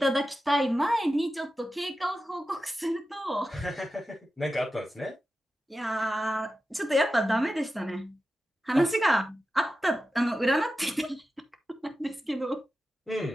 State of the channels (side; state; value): both; normal; correlation 0.93